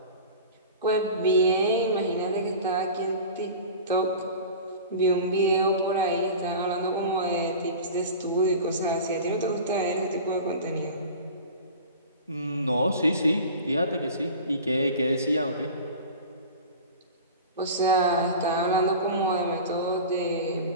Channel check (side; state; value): both; inverted; correlation -0.35